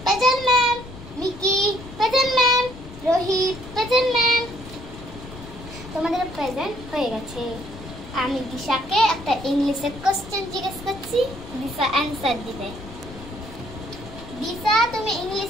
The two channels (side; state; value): left; noise; rumble, 15 dB below the sound